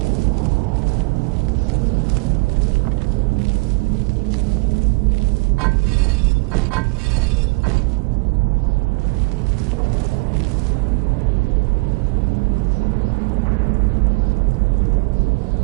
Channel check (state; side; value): quieter; left; 29.0 dB